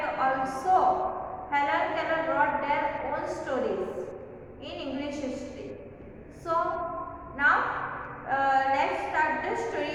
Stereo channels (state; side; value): identical; both; correlation 1.00